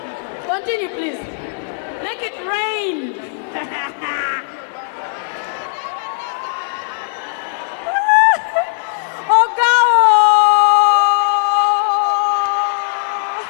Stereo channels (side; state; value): right; silent; digital silence